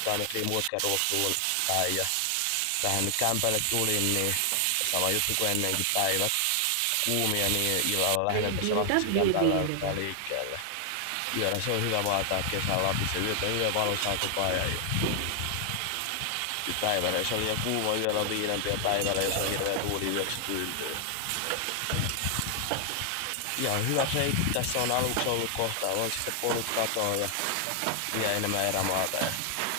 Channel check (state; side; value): different; both; correlation 0.00